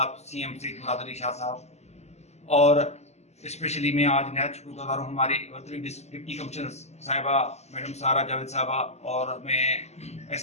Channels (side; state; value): right; late; 0.32 ms